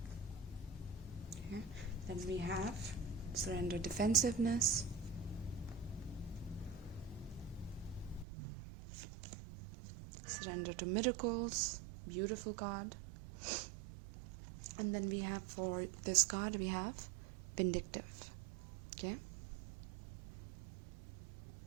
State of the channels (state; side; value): drops out; left; at 8.2 s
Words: okay, then we have surrender, defensiveness, surrender to miracles, beautiful card. And then we have, for this card, we have vindictive, okay.